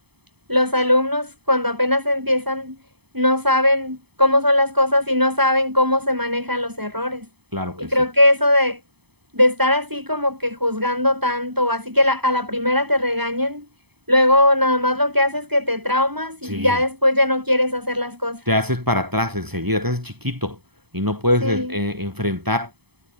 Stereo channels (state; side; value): late; left; 0.98 ms